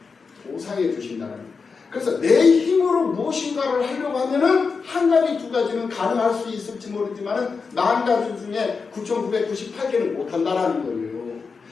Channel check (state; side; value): quieter; right; 5.0 dB